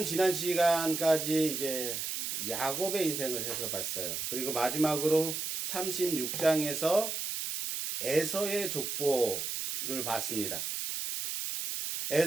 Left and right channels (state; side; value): noise; right; hiss, 3 dB below the sound